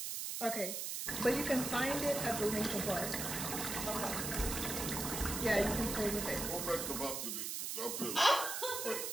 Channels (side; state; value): right; noise; hiss, 3 dB below the sound